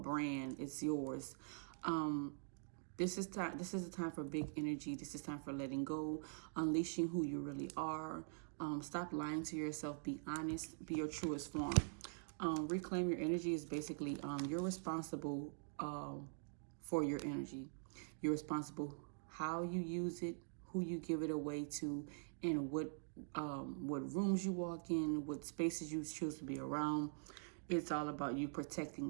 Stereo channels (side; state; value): left; silent; digital silence